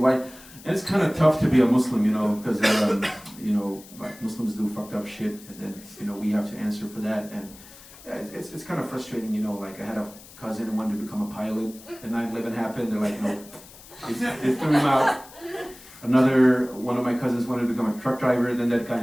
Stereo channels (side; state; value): left; noise; hiss, 20 dB below the sound